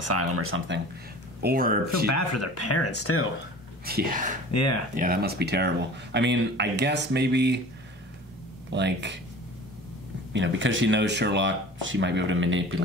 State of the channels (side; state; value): both; normal; correlation 0.41